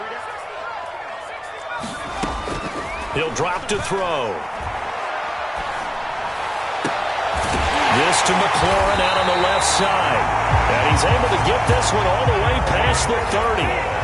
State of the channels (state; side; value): identical; both; correlation 1.00